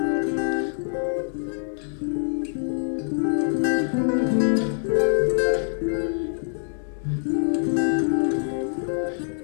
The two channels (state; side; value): silent; right; 62 dB below the other